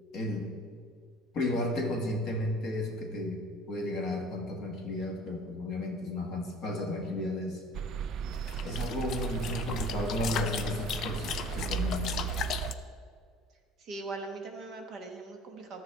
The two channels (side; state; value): both; normal; correlation 0.47